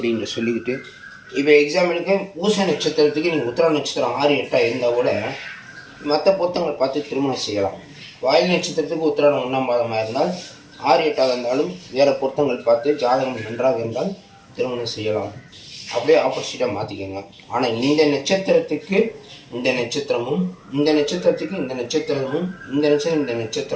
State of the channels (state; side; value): identical; both; correlation 1.00